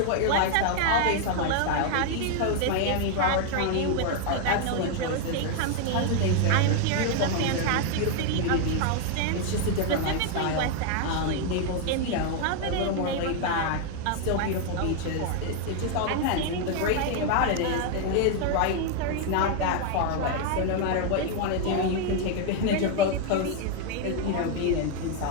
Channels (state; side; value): different; both; correlation 0.00